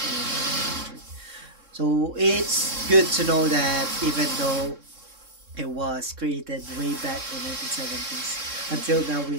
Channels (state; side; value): late; left; 3.6 ms